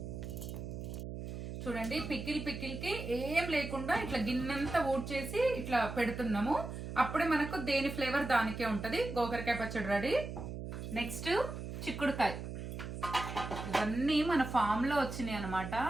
చూడండి, పికిల్కి ఏం లేకుండా ఇట్లా గిన్నెంతా ఊడ్చేసి ఇట్లా పెడుతున్నాము. అప్పుడే మనకు దేని ఫ్లేవర్ దానికే ఉంటుంది. గోకరకాయ పచ్చడి రెడీ. నెక్స్ట్ చిక్కుడుకాయ. ఇవన్నీ మన ఫామ్లో వచ్చినాయి అనమాట,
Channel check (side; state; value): right; noise; hum, 7 dB below the sound